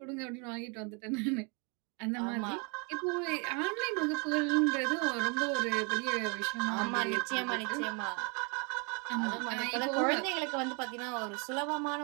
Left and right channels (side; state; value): left; quieter; 34.1 dB